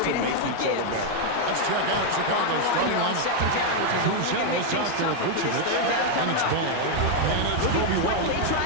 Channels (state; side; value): different; both; correlation 0.01